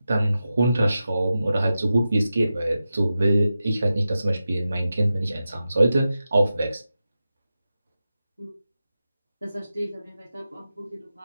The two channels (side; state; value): both; inverted; correlation -0.92